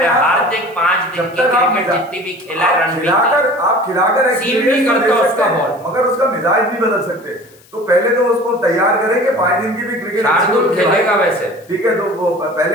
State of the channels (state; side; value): noise; left; hiss, 28 dB below the sound